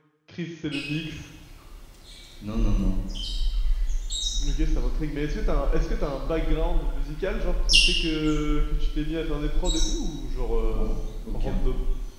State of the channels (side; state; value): both; identical; correlation 1.00